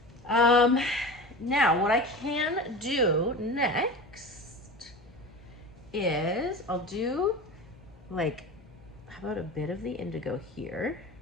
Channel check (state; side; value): noise; left; hum, 26 dB below the sound